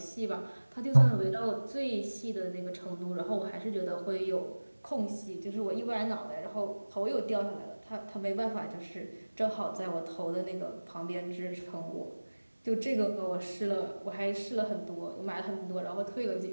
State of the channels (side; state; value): both; inverted; correlation -1.00